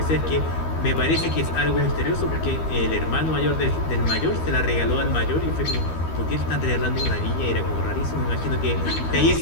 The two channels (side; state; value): right; late; 12 ms